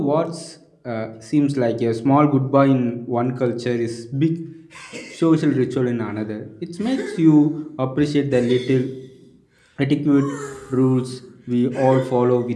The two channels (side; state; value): both; identical; correlation 1.00